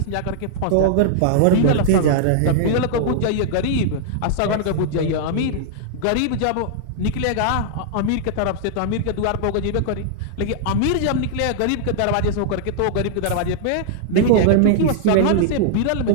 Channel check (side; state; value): both; different; correlation -0.01